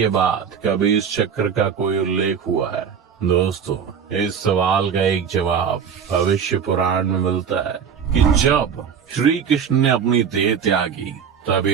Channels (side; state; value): left; quieter; 7.2 dB